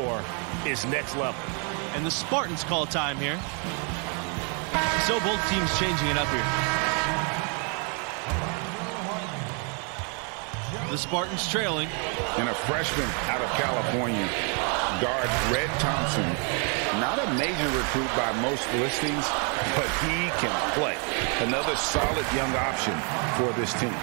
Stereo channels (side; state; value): left; quieter; 38.0 dB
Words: is next level. And the Spartans call time here. So both teams changing it up here. The Spartans trailing. And a freshman out of California, guard Red Thompson. Not a major recruit by most listings, but he can play. Another solid young option for this team.